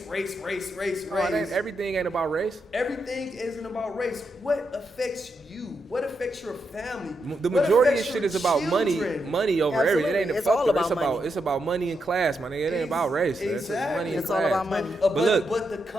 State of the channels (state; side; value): normal; both; correlation 0.83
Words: Everything ain't about race. Everything isn't about race. What affects you? What affects your family? The What majority of affects shit your is about money over Absolutely. everything. It ain't It's fuck all the- about money. It's about money and class, my nigga. It ain't about race. It's Exactly. money and It's all class. about money. But look. but the